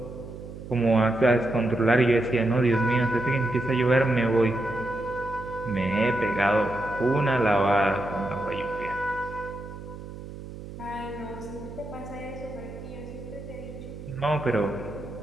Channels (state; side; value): noise; right; hum, 12 dB below the sound